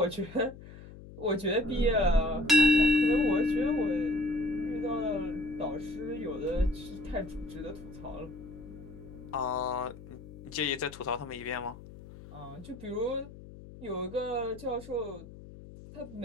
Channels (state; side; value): noise; left; hum, 16 dB below the sound